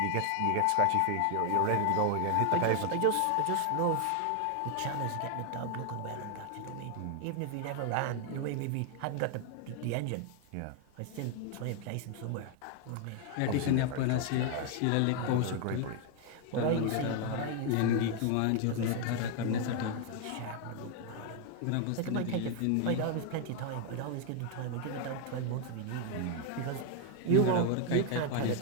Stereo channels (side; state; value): both; different; correlation 0.00